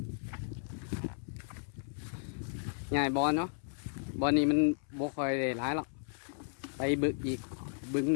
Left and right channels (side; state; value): right; silent; 55 dB below the other